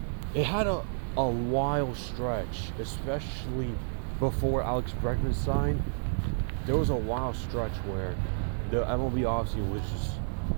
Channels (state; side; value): silent; left; digital silence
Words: It had a wild stretch, especially before Alex Bregman signed. There was a wild stretch where the MLB offseason was just